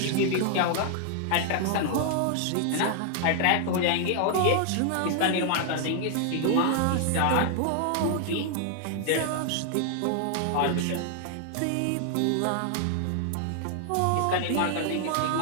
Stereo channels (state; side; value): different; both; correlation 0.00